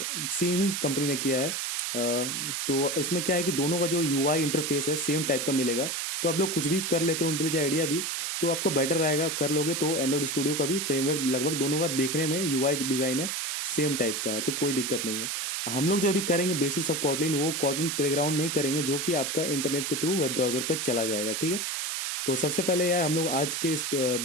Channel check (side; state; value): right; noise; hiss, 2 dB below the sound